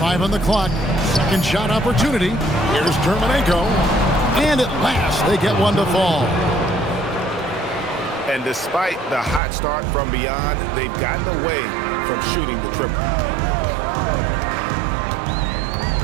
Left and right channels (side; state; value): left; drops out; at 9.4 s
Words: on the clock. Second shot opportunity. Here's Terminenko. And at last, they get one to fall. And despite the hot start from beyond, they've gotten away from shooting the triple.